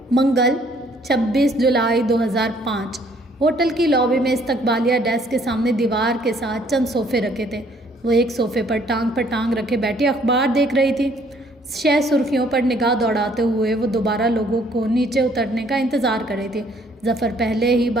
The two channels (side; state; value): both; normal; correlation 0.63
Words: منگل 26 جولائی 2005 ہوٹل کی لابی میں استقبالیہ ڈیسک کے سامنے دیوار کے ساتھ چند صوفے رکھے تھے۔ وہ ایک صوفے پر ٹانگ رکھے بیٹھی اخبار دیکھ رہی تھی۔ شہ سرخیوں پر نگاہ دوڑاتے ہوئے وہ دوبارہ لوگوں کو نیچے اترنے کا انتظار کر رہی تھی۔ ظفر پہلے ہی